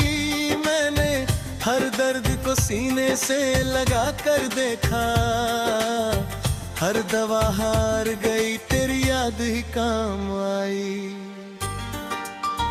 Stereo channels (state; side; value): identical; both; correlation 1.00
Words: मैंने हर दर्द को सीने से लगा कर देखा, हर दवा हार गई तेरी याद ही काम आई।